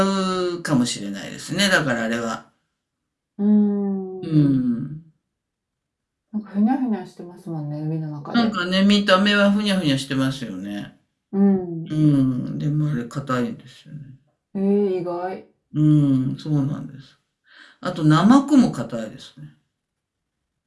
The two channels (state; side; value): identical; both; correlation 1.00